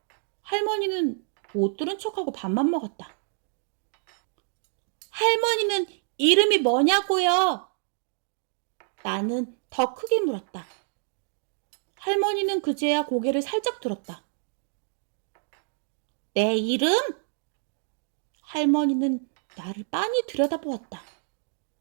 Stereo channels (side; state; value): left; silent; digital silence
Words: 할머니는 못 들은 척하고 밥만 먹었다. 할머니는 이름이 뭐냐고요? 나는 더 크게 물었다. 할머니는 그제야 고개를 살짝 들었다. 내 이름? 할머니는 나를 빤히 들여다보았다.